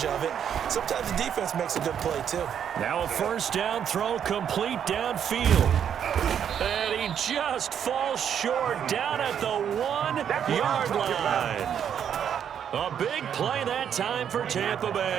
of it. Sometimes the defense makes a good play, too. Now a first down throw complete downfield. And he just falls short down at the 1-yard line. A big play that time for Tampa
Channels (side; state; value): left; quieter; 8.6 dB